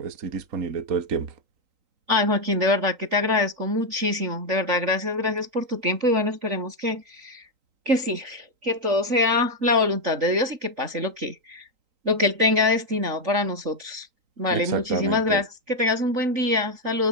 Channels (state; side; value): late; left; 3.9 ms